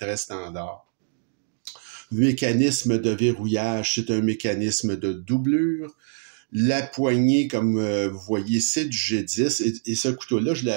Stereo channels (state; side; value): silent; left; digital silence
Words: standard. Le mécanisme de verrouillage, c'est un mécanisme de doublure. La poignée, comme vous voyez, c'est du G10. Et ce couteau-là, je l'ai